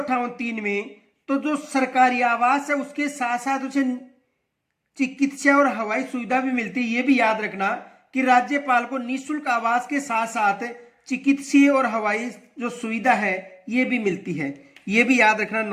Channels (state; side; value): identical; both; correlation 1.00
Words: में, तो जो सरकारी आवास है उसके साथ साथ उसे चिकित्सा और हवाई सुविधा भी मिलती है। ये भी याद रखना कि राज्यपाल को निःशुल्क आवास के साथ साथ चिकित्सीय और हवाई जो सुविधा है ये भी मिलती है। ये भी याद रखना,